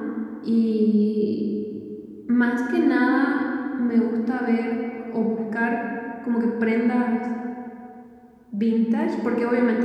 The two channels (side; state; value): both; identical; correlation 1.00